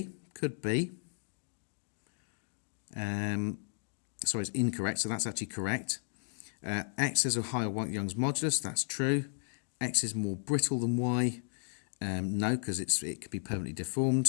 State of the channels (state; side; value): silent; right; digital silence